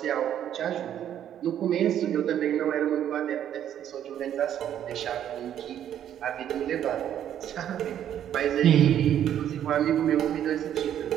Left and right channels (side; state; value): left; quieter; 10.4 dB